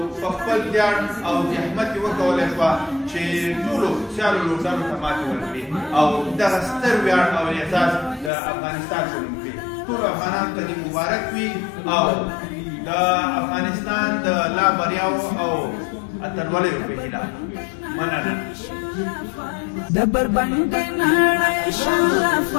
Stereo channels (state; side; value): drops out; right; at 8.3 s